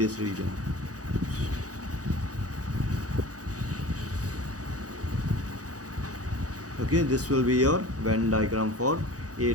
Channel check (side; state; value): left; late; 0.67 ms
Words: region. Okay, this will be your Venn diagram for A